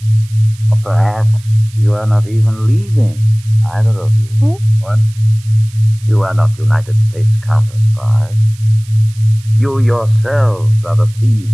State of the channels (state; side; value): noise; right; hiss, 24 dB below the sound